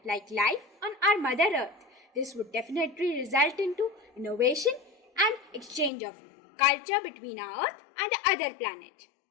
like life on our Mother Earth, this would definitely result into innovation and exchange of culture between our Earth and the other planet.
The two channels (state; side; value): drops out; right; at 5.9 s